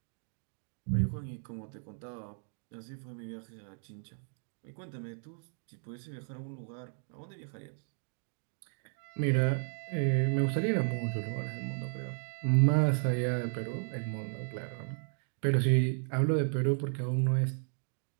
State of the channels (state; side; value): silent; left; digital silence